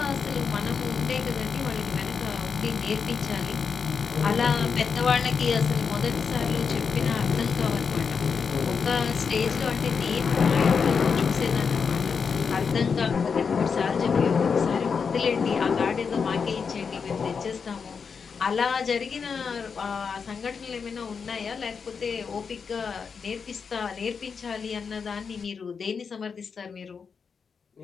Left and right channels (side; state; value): right; quieter; 5.8 dB